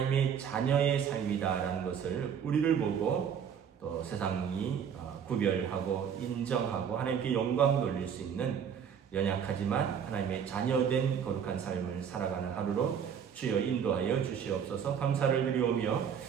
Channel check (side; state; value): left; quieter; 7.8 dB